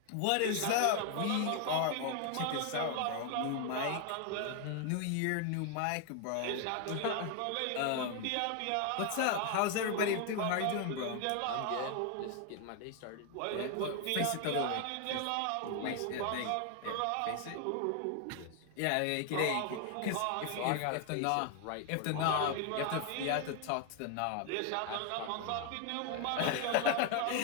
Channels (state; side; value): different; both; correlation 0.01